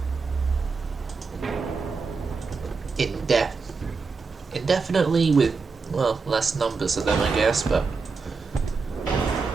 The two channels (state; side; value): quieter; left; 4.6 dB